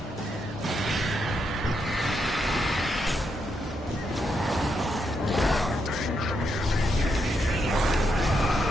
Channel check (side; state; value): both; normal; correlation 0.81